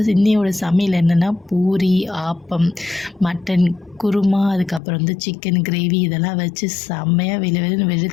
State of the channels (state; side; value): drops out; right; at 4.8 s